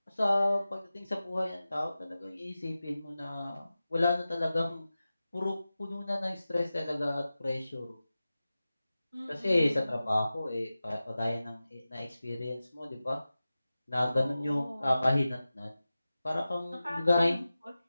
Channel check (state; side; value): inverted; both; correlation -0.95